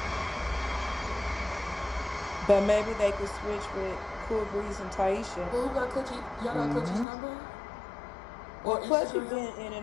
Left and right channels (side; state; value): right; drops out; at 7.1 s